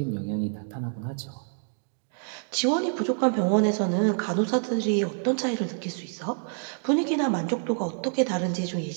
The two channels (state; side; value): silent; left; digital silence